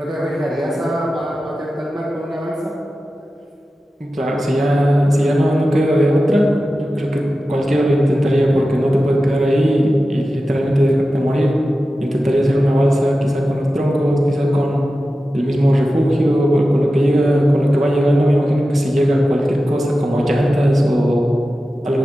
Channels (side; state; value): both; normal; correlation 0.93